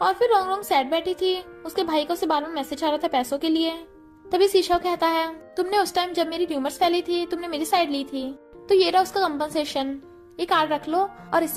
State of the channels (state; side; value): identical; both; correlation 1.00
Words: और फिर रोंगरोंग सैड बैठी थी, उसके भाई को उसे बार बार मैसेज आ रहा था पैसों के लिए। तभी सीशा कहता है तुमने उस टाइम जब मेरी ट्यूमर्स फैली थी तुमने मेरी साइड ली थी, तो ये रहा उसका कंपनसेशन, ये कार्ड रख लो और